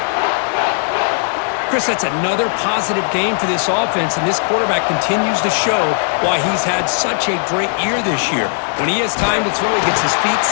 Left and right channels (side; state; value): right; silent; digital silence